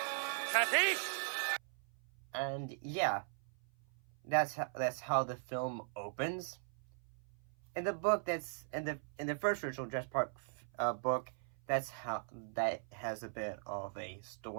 Kathy? And yeah, that's how the film opens. In the book, that's in the first original Jurassic Park book, that's how that has a bit of a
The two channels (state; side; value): silent; left; 51 dB below the other